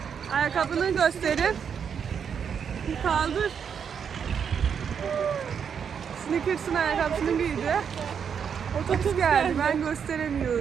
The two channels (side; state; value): left; quieter; 7.3 dB